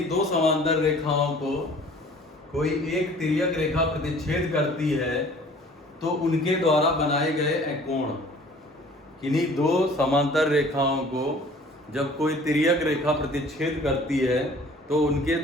दो समांतर रेखाओं को कोई एक तिर्यक रेखा प्रतिच्छेद करती है, तो उनके द्वारा बनाए गए कोण। किन्हीं दो समांतर रेखाओं को जब कोई तिर्यक रेखा प्रतिच्छेद करती है, तो उनके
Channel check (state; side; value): normal; both; correlation 0.50